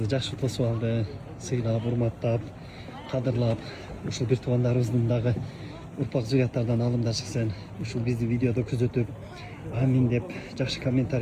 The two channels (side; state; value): both; identical; correlation 1.00